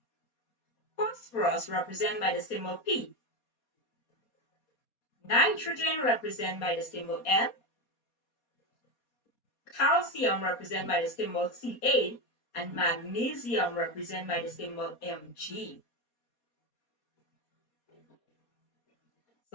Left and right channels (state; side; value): late; right; 4.2 ms